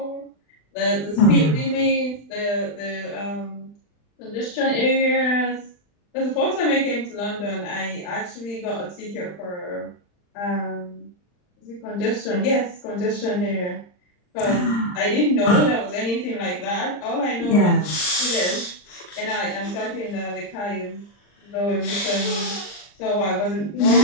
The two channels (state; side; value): late; right; 39 ms